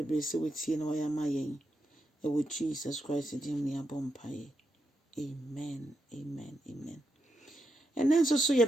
sɛ wotie na wɔyɛ ama yɛn. Ɛwɔ Jesus Christ din mu yɛabɔ mpaeɛ. Amen, amen, amen. Ɛnɛ nso so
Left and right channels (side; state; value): both; normal; correlation 0.84